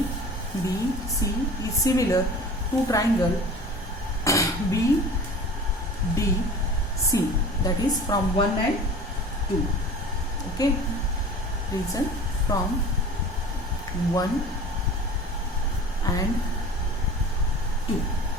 is similar to triangle BDC, that is from 1 and 2. Okay. Reason, from 1 and 2.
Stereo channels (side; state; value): both; normal; correlation 0.40